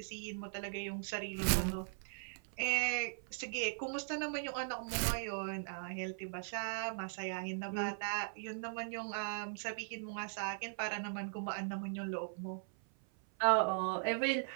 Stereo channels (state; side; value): silent; left; 52 dB below the other